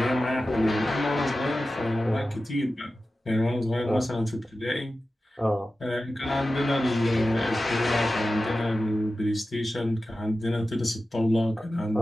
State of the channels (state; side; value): normal; both; correlation 0.94